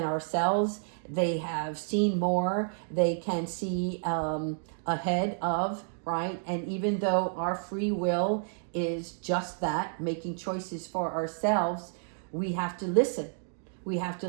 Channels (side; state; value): left; silent; digital silence